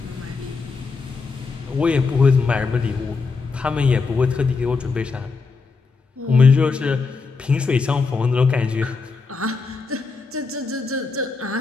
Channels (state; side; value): quieter; right; 4.5 dB